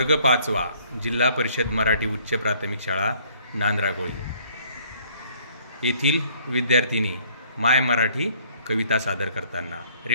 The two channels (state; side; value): inverted; both; correlation -0.61